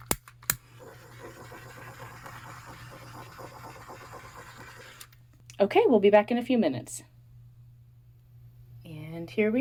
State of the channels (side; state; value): both; identical; correlation 1.00